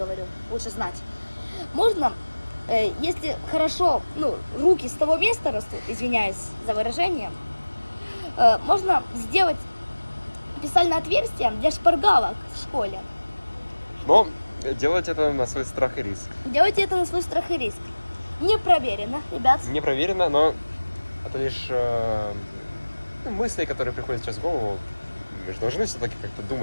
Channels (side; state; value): both; inverted; correlation -1.00